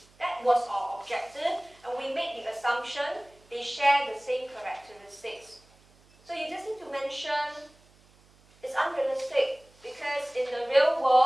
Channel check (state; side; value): noise; right; hum, 29 dB below the sound